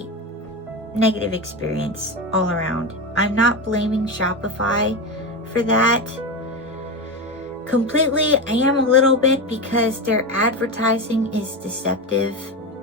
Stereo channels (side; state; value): both; normal; correlation 0.18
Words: negative experience all around. I'm not blaming Shopify for that completely. I am a little bit, because their advertising is deceptive.